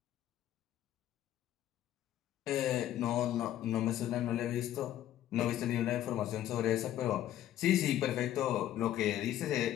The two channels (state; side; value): quieter; right; 12.4 dB